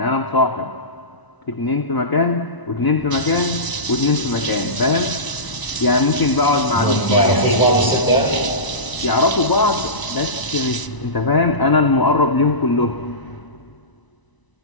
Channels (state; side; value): late; right; 1.0 ms